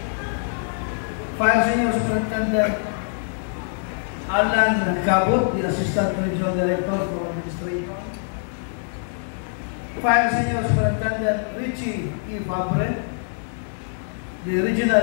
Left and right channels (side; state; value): right; silent; digital silence